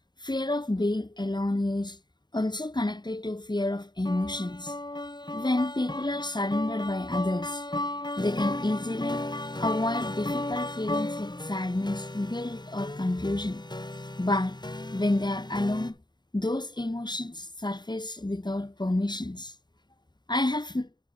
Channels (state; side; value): late; right; 0.21 ms